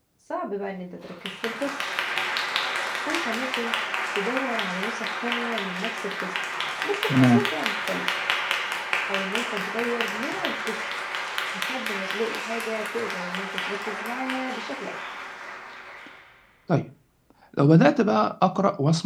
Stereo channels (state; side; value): identical; both; correlation 1.00